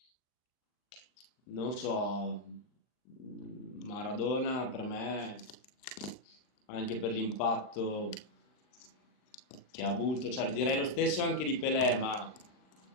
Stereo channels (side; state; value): right; late; 39 ms